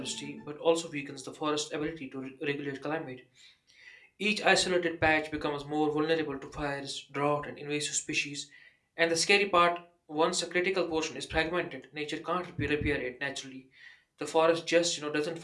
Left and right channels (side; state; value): both; identical; correlation 1.00